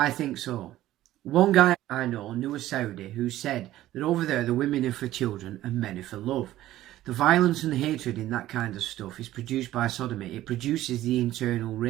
think so. One guy I know knew a Saudi who said that over there the women are for children and men are for love. The violence and hatred in that kind of stuff is produced by sodomy. It produces the internal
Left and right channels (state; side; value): quieter; left; 14.5 dB